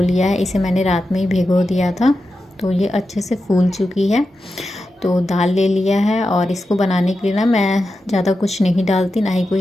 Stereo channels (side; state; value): both; normal; correlation 0.90